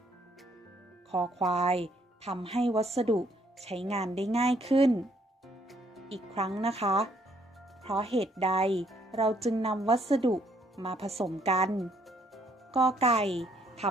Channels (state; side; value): normal; both; correlation 0.68